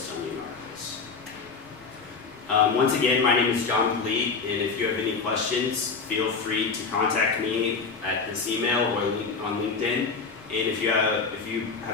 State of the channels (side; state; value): right; quieter; 4.9 dB